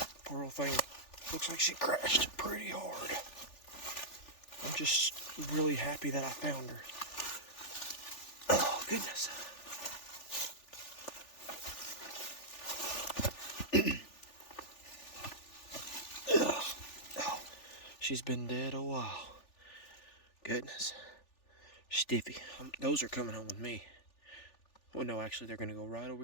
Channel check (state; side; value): late; right; 3.4 ms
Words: Poor old thing looks like she crashed pretty hard. I'm just really happy that I found her. Oh, goodness. Oh, she's been dead a while. Goodness. Stiffy. Those are coming home with me. Well, no, actually, they're going to go right over